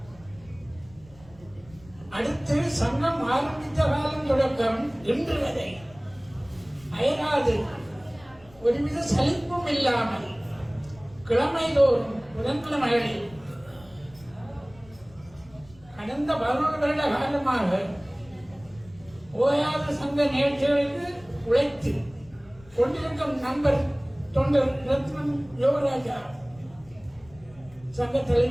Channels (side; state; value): left; noise; rumble, 24 dB below the sound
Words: அடுத்து சங்கம் ஆரம்பித்த காலம் தொடக்கம் இன்று வரை அயராது ஒருவித சலிப்பும் இல்லாமல் கிழமைதோறும் புதன்கிழமைகளில் கடந்த 11 வருட காலமாக ஓயாத சங்க நிகழ்ச்சிகளுக்கு உழைத்து கொண்டிருக்கும் நண்பர் தொண்டர் ரத்னம் யோகராஜா, சங்க